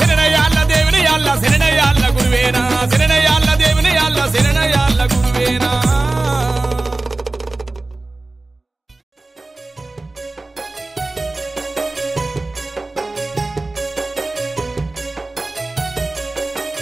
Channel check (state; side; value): quieter; left; 3.1 dB